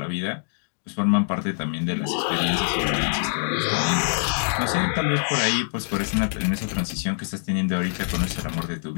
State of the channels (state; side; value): silent; right; digital silence